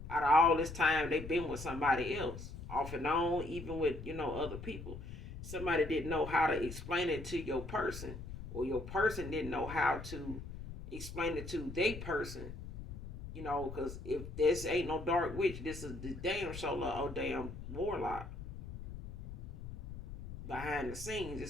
Out of all this time, they've been with somebody else, off and on, even with, other people. Somebody didn't know how to explain it to your person, or your person didn't know how to explain it to their person, because if this ain't no dark witch, this is the damn shoulder or damn warlock. Behind the scenes,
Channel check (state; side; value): noise; left; rumble, 10 dB below the sound